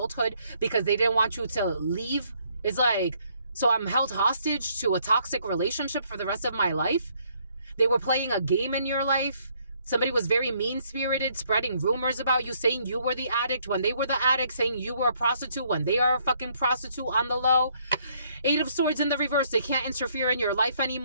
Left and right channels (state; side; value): inverted; both; correlation -0.68